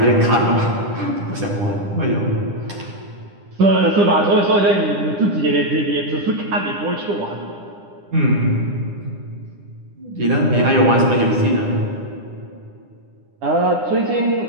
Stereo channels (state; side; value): late; left; 9.9 ms